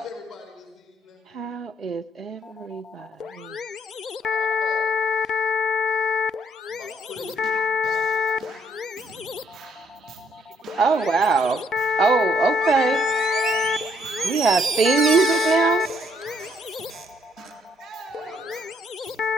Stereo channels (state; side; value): normal; both; correlation 0.68